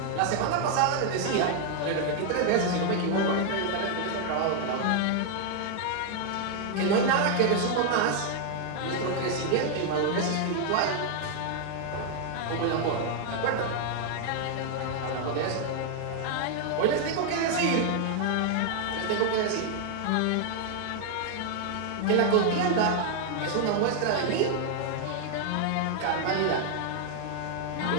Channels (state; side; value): different; both; correlation 0.00